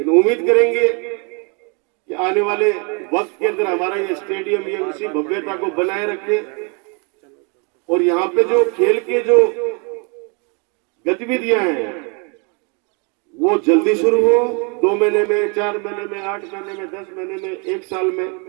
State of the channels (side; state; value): left; quieter; 34.2 dB